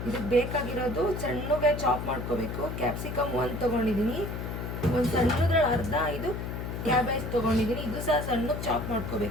ಇದಕ್ಕೆ ಬೇಕಾಗಿರೋದು ಸಣ್ಣಗೆ ಚಾಪ್ ಮಾಡ್ಕೋಬೇಕು. ಕ್ಯಾಪ್ಸಿಕಮ್ ಒಂದು ತೊಗೊಂಡಿದ್ದೀನಿ, ಒಂದು ಸಣ್ಣದ್ರಲ್ಲಿ ಅರ್ಧ ಇದು ಕ್ಯಾಬೇಜ್ ತೊಗೊಂಡಿದ್ದೀನಿ, ಇದು ಸಹ ಸಣ್ಣಗೆ ಚಾಪ್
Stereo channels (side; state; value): left; noise; hum, 5 dB below the sound